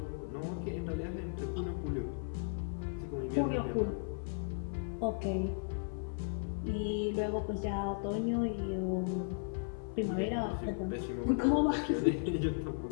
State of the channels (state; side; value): silent; right; 54 dB below the other